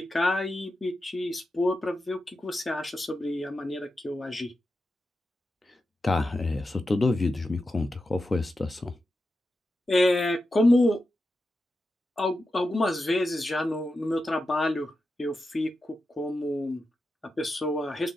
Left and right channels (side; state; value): both; normal; correlation 0.90